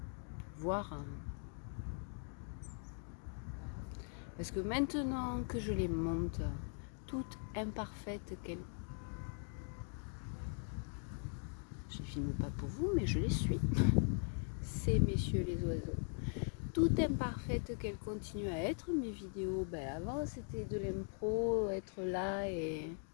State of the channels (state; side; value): silent; right; 51 dB below the other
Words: voir. Parce que maintenant que je les monte, toutes imparfaites qu'elles... Je les filme pas pour vous, mais je les suis. Ces messieurs les oiseaux. Toutes imparfaites qu'elles continuent à être, mes vidéos, avant c'était de l'impro, être là et